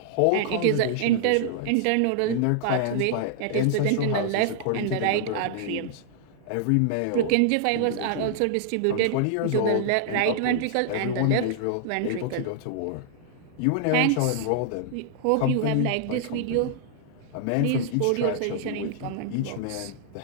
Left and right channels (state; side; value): different; both; correlation -0.01